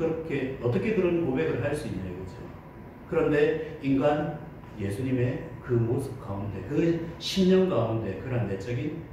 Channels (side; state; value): both; identical; correlation 1.00